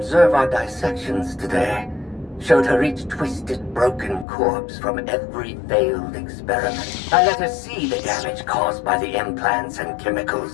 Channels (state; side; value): drops out; right; at 4.2 s